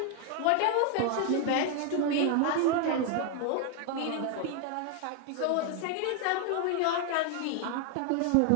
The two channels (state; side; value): different; both; correlation 0.01